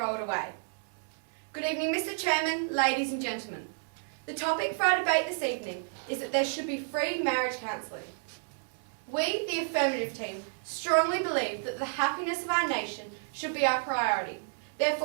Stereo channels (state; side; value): silent; left; digital silence